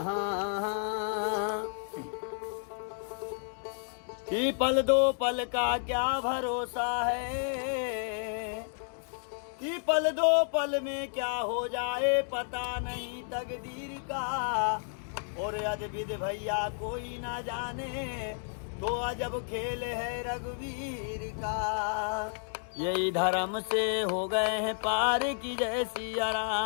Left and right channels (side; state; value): right; silent; digital silence